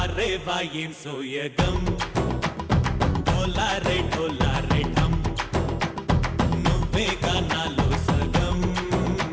వాయేం సోయగం ढोला रे ढम నువ్వే గానాలో సగం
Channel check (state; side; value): identical; both; correlation 1.00